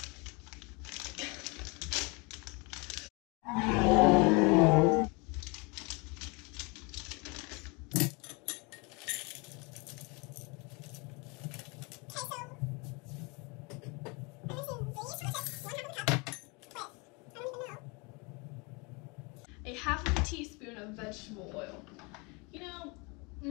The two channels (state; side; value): quieter; right; 29.4 dB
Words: A half of a teaspoon of vegetable oil. You know,